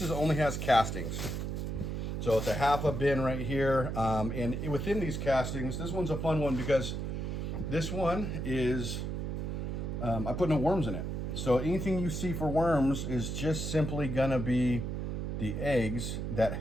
only has castings. So it's a half a bin right here. And within these castings, this one's a fun one because this one is, I put no worms in it. So anything you see for worms is just simply gonna be the eggs that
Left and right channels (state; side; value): noise; right; hum, 3 dB below the sound